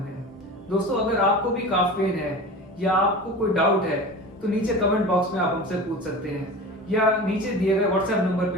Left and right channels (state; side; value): normal; both; correlation 0.34